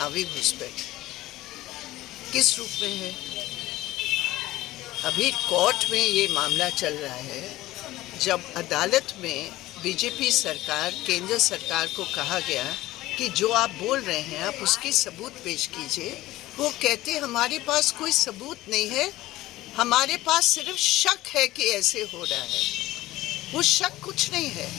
घुसपैठ किस रूप में है? अभी कोर्ट में ये मामला चल रहा है, जब अदालत में बीजेपी सरकार, केंद्र सरकार को कहा गया कि जो आप बोल रहे हैं आप उसकी सबूत पेश कीजिए। वो कहते हमारे पास कोई सबूत नहीं है, हमारे पास सिर्फ शक है कि ऐसे हो रहा है। वो शक कुछ नहीं है,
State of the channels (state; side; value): quieter; right; 16.8 dB